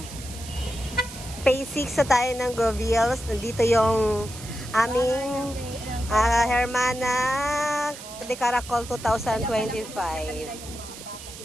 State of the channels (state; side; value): noise; right; hiss, 14 dB below the sound